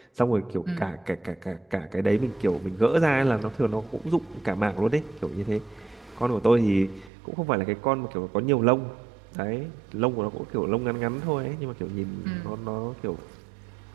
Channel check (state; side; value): drops out; left; at 7.1 s